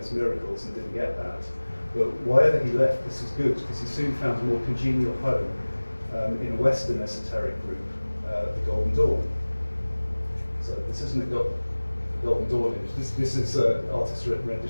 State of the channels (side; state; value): both; inverted; correlation -1.00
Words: miracles and didn't get that. But wherever he left, this was good, because he soon found a more congenial home in a Western esoteric group, the Golden Dawn. So this isn't a Golden Dawn image. This is an artist's